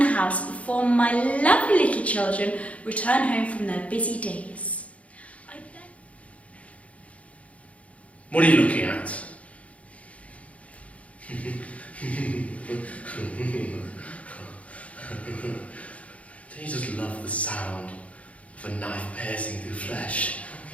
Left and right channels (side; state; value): right; late; 0.065 ms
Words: house before my lovely little children return home from their busy days. What are you looking at? Don't you just love the sound of a knife piercing through flesh?